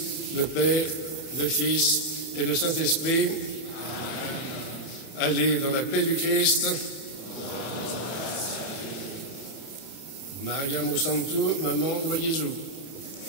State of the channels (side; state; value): right; late; 31 ms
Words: le Père, le Fils et le Saint-Esprit. Allez dans la paix du Christ. Maria Santo, maman ou Jésus.